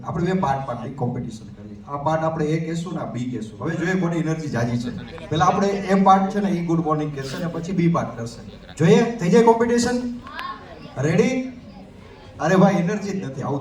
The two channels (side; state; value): both; identical; correlation 1.00